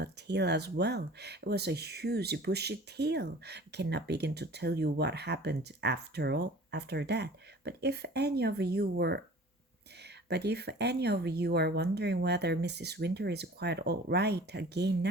tail as well. It was a huge bushy tail. I cannot begin to tell you what happened after that. But if any of you are wondering whether Mrs. Winter is quite all right again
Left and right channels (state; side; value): normal; both; correlation 0.45